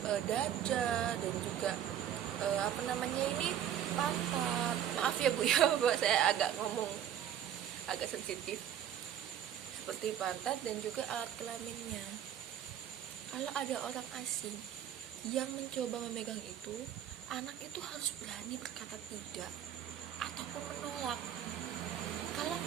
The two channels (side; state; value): left; quieter; 10.1 dB